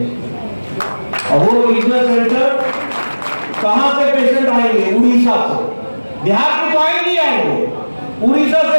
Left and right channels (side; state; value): both; inverted; correlation -1.00